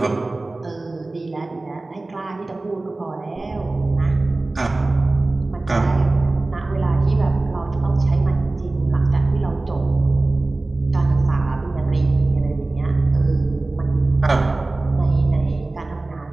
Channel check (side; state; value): left; quieter; 3.1 dB